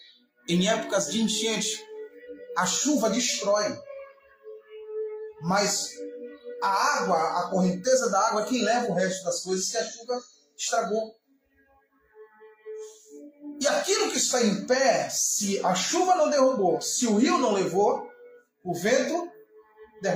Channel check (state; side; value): identical; both; correlation 1.00